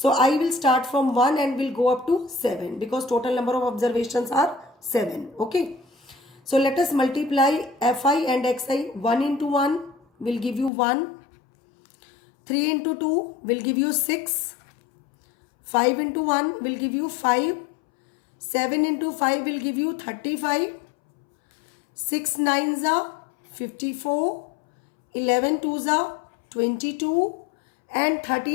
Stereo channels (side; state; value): right; drops out; at 10.7 s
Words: I will start from 1 and will go up to 7 because total number of observations are 7. Okay. So let us multiply Fi and Xi. 1 into 1 will give you 1. 3 into 2 will give you 6. 5 into 1 will give you 5. 7 into 5 will give you 35. 6 9s are 54. 11 2s are 22. And